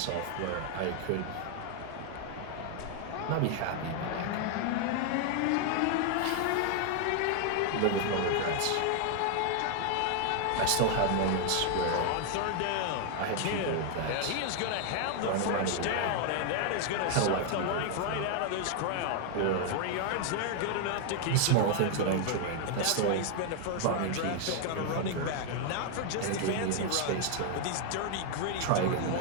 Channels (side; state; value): both; different; correlation 0.00